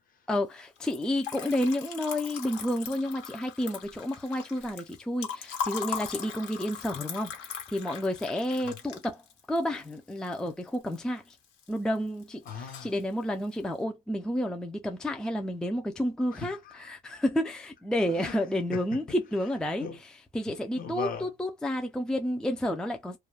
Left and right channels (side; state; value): both; normal; correlation 0.82